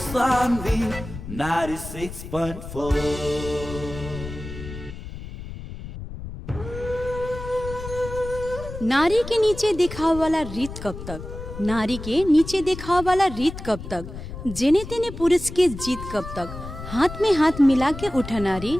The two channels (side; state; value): left; noise; rumble, 11 dB below the sound